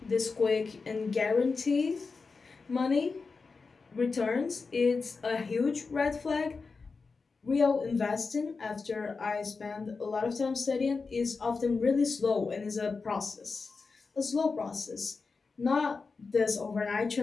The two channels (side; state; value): right; quieter; 4.5 dB